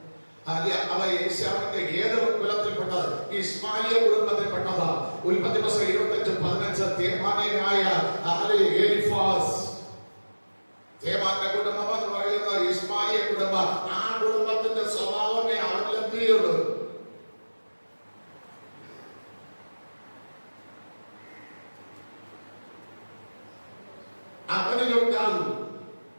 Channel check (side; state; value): both; inverted; correlation -1.00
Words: അവ യേശാവിന്റെ ഏത് കുലത്തിൽപ്പെട്ടത്? ഇസ്മായിലിയ കുടുംബത്തിൽപ്പെട്ടത്. ഉൽപ്പത്തി പുസ്തകം 25:15 തേമാന്യനായ എലിഫാസ്. തേമാന്റെ കുടുംബം എന്ന് പറയുന്നത് ഇസ്മായിലിയ കുടുംബം. ആ കുടുംബത്തിന്റെ സ്വഭാവമേ അവരിലെത്തിയുള്ളൂ. അവനിലുണ്ടാകും.